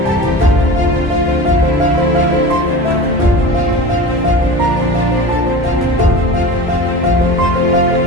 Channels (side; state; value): both; normal; correlation 0.33